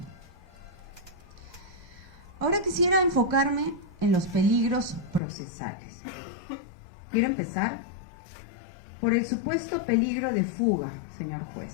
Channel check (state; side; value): drops out; right; at 5.2 s